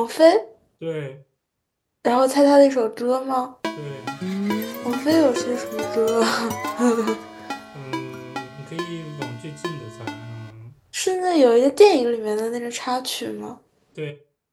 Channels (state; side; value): identical; both; correlation 1.00